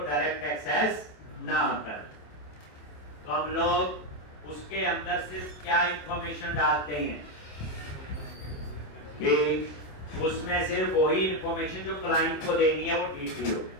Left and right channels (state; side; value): late; right; 27 ms